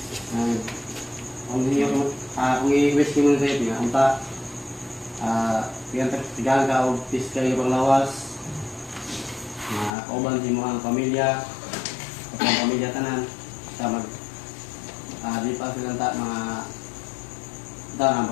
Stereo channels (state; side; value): drops out; right; at 9.9 s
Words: Kung i-wish mo sa ito nga, tigang ka o piskay ibang lawas, kauban sa mga pamilya, sa pamilya tanan, sa di pa silang